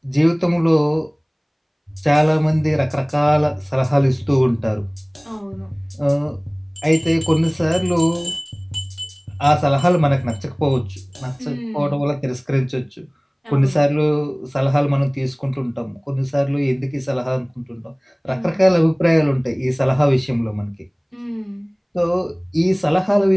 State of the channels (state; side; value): identical; both; correlation 1.00